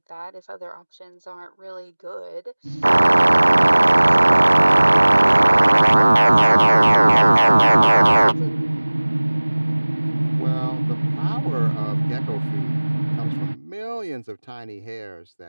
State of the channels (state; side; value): inverted; both; correlation -1.00